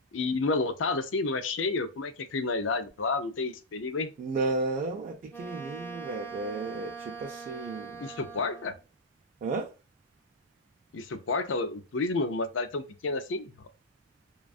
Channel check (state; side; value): normal; both; correlation -0.06